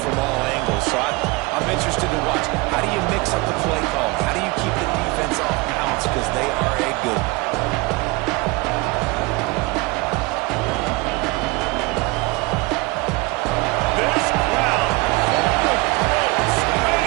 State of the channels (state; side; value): quieter; left; 24.5 dB